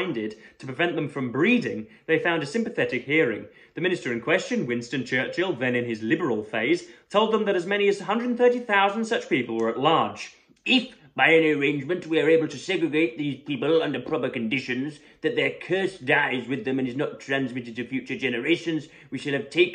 to prevent them from breeding, they found a sympathetic hearing. The minister in question, Winston Churchill, then in his liberal phase, told them that as many as 130,000 such people were at large. If, by any arrangement, we are able to segregate these people under proper conditions, that their curse dies with them and is not transmitted to future generations, we shall have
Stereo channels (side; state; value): both; identical; correlation 1.00